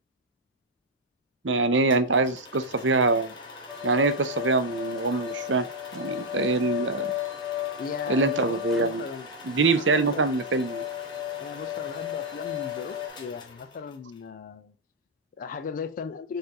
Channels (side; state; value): both; normal; correlation -0.03